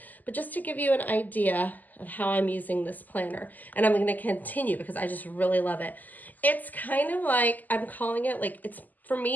but just to give you an idea of how I'm using this planner. And I'm going to continue because I just really love it. It's kind of like, I'm calling it like, for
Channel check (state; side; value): late; right; 0.083 ms